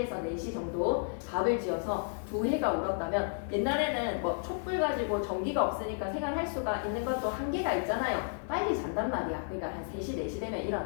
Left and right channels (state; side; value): silent; right; digital silence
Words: 4시 정도 밥을 지어서 두 해가 울었다면 옛날에는 뭐 촛불 가지고 전기가 없으니까 생활할 수가 있는 것도 한계가 있잖아요. 빨리 잔단 말이야. 그러니까 한 3시, 4시 되면